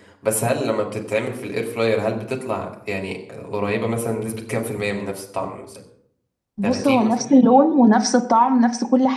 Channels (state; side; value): identical; both; correlation 1.00